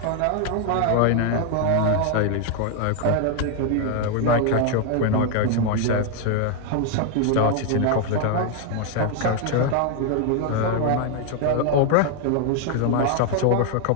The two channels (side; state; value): both; different; correlation 0.00